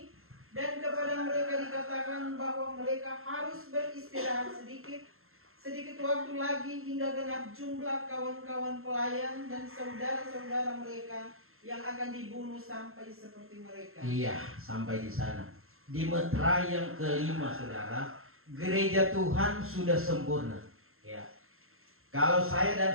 dan kepada mereka dikatakan bahwa mereka harus beristirahat sedikit waktu lagi hingga genap jumlah kawan-kawan pelayan dan saudara-saudara mereka yang akan dibunuh sampai seperti mereka. Iya, sampai di sana. Di meterai yang kelima, saudara, gereja Tuhan sudah sempurna. Ya. Kalau saya dan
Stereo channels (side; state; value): left; late; 0.61 ms